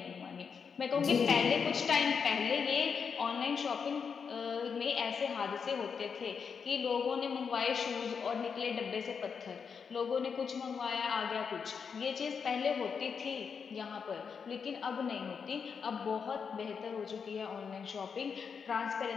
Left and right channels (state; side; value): quieter; right; 6.2 dB